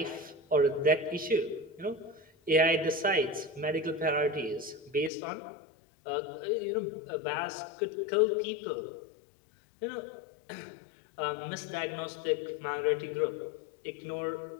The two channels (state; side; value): drops out; right; at 5.1 s